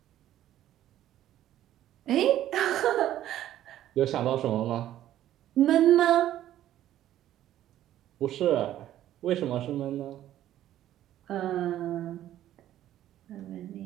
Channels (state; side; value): quieter; left; 12.6 dB